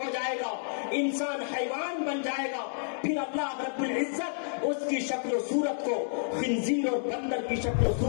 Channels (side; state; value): right; silent; digital silence